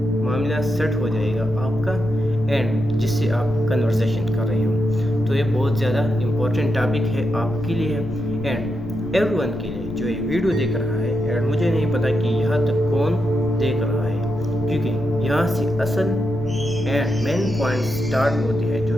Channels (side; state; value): left; noise; rumble, 12 dB below the sound